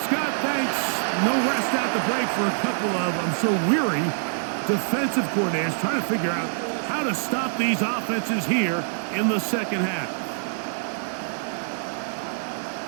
Scott, thanks. No rest at the break for a couple of, I'm sure, weary defensive coordinators trying to figure out how to stop these offenses here in the second half.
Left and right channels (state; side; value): silent; left; digital silence